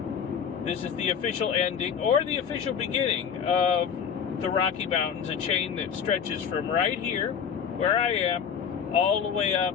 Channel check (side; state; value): right; quieter; 7.3 dB